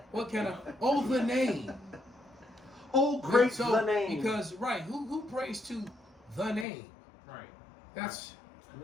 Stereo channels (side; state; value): right; drops out; at 6.7 s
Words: What kind of the name? Oh, great the name. Because who prays to the name? Right. That's